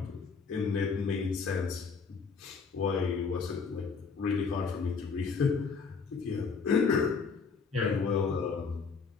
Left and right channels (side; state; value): right; quieter; 5.2 dB